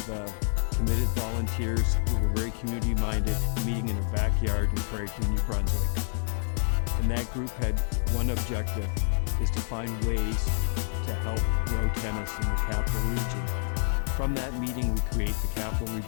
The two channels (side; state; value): right; silent; 59 dB below the other